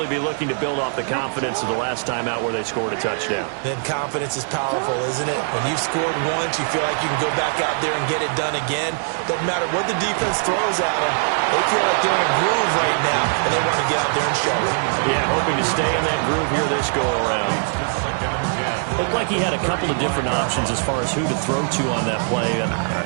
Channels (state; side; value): silent; left; 55 dB below the other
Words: be looking to build off the confidence of the last time out where they scored a touchdown. Then confidence is powerful, isn't it? When you've scored once, you feel like you can go back out there and get it done again. Doesn't matter what the defense throws at them. They feel like they're in a groove right now, and they want to get out there and show it. Yeah, hoping to stay in that groove here this go-around. Looked like he had a couple of different options as far as who to throw to on that play. And